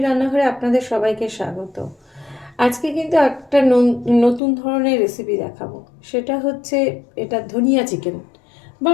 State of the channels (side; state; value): right; drops out; at 4.4 s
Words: রান্নাঘরে আপনাদের সবাইকে স্বাগত। আজকে কিন্তু একটা নতুন ধরনের রেসিপি দেখাবো। সেটা হচ্ছে এটা ধনিয়া চিকেন, বা